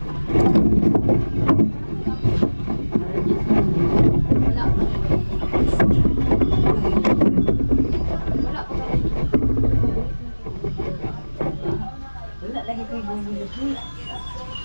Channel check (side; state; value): both; inverted; correlation -1.00